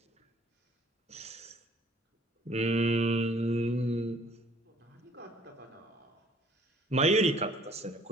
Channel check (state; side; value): normal; both; correlation 0.57